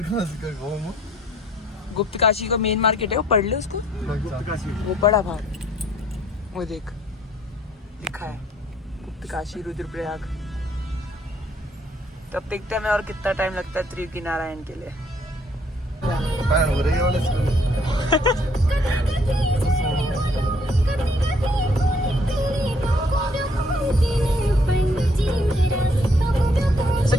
गुप्त काशी का मेन मार्केट है, वो पढ़ ले उसको। वो बड़ा भाग वो देख लिखा है गुप्त काशी रुद्रप्रयाग। तब देखते हैं मैं और कितना टाइम लगता है त्रियुगी नारायण के लिए।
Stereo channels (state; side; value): normal; both; correlation 0.64